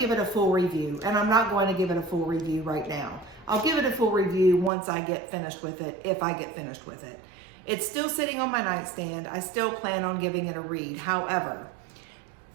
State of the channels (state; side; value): drops out; left; at 4.7 s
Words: it a full review, and I'm not going to give it a full review right now. I'll give it a full review once I get finished with it, if I get finished with it. It's still sitting on my nightstand. I still plan on giving it a read. However,